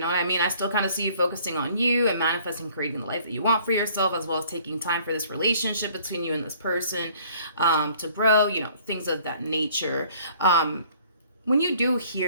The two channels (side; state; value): both; inverted; correlation -0.57